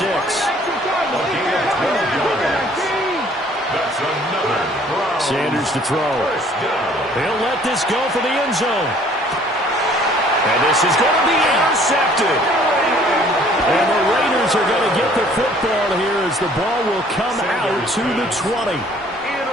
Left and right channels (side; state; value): both; normal; correlation 0.57